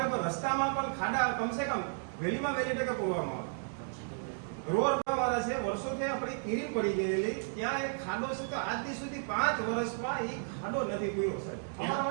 પણ રસ્તામાં પણ ખાડા કમસે કમ વહેલીમાં વહેલી તકે પૂરવામાં આવે. રોડ વાળા છે, વર્ષોથી આપણી કિરીમ પડી ગયેલી, ત્યાં એક ખાડો છે તો આજ દી સુધી 5 વર્ષમાં એ ખાડો નથી પૂર્યો સાહેબ. અમારા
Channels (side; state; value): left; silent; digital silence